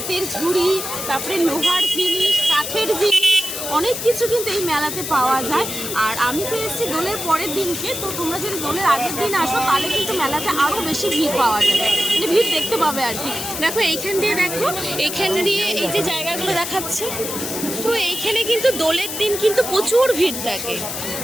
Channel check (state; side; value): noise; left; hiss, 5 dB below the sound